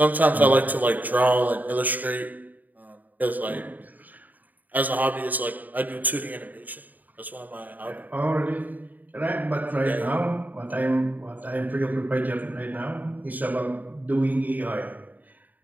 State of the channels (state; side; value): late; left; 0.083 ms